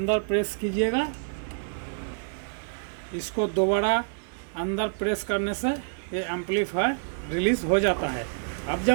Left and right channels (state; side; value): silent; left; 60 dB below the other